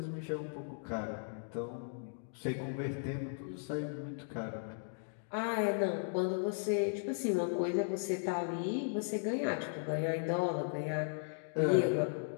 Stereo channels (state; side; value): silent; right; digital silence